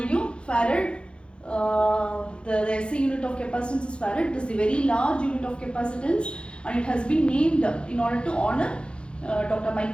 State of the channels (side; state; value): right; late; 0.056 ms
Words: you farad, the SI unit of capacitance is farad. It is a very large unit of capacitance and it has been named in order to honor Dr.